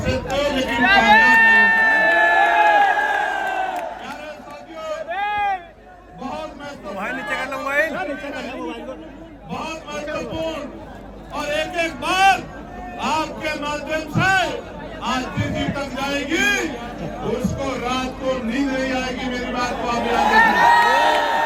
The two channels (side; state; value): both; identical; correlation 1.00